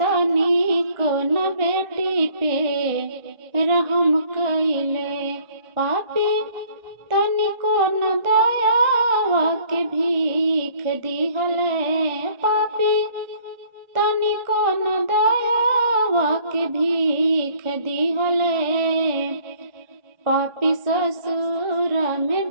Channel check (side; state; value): left; late; 1.6 ms